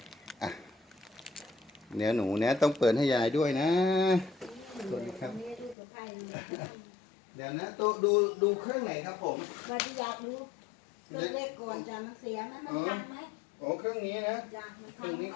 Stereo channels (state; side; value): drops out; right; at 5.8 s